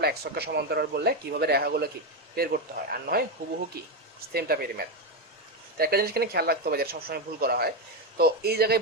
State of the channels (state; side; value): normal; both; correlation 0.09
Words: x অক্ষ সমান্তরাল বললে কিভাবে রেখাগুলো কি বের করতে হয়, আর নয় হুবহু কি সেম টাইপের ম্যাথ। তো একটা জিনিস এখানে খেয়াল রাখতে হবে যেটা সবসময় ভুল করা হয়, তো এই জায়গায়